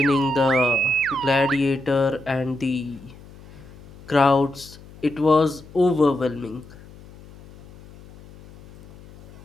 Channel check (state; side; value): noise; left; hum, 21 dB below the sound